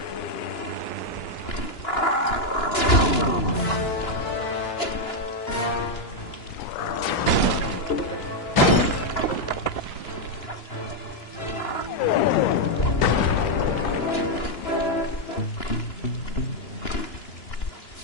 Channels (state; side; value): late; right; 2.9 ms